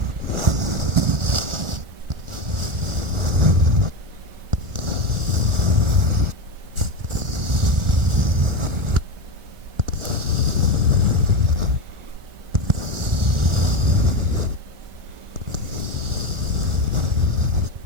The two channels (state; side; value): late; left; 1.4 ms